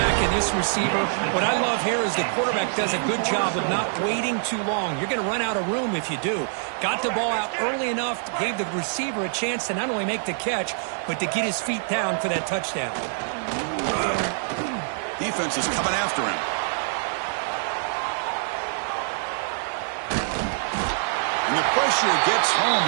and this receiver. What I love here is the quarterback does a good job of not waiting too long. You're going to run out of room if you do. Got the ball out early enough, gave the receiver a chance to not only make the catch, but to get his feet down for that touchdown. Defense is coming after him. And the pressure gets home.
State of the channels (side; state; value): left; silent; digital silence